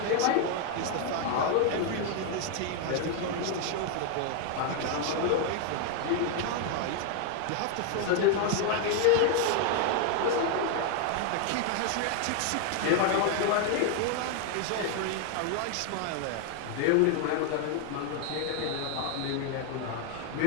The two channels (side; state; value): both; different; correlation 0.00